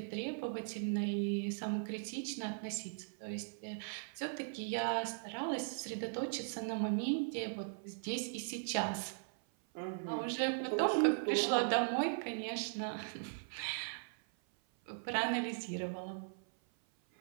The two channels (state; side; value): silent; left; 52 dB below the other